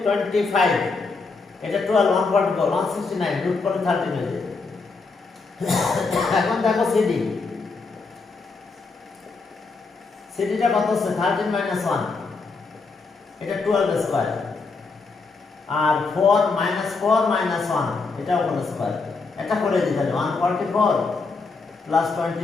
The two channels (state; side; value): quieter; right; 4.2 dB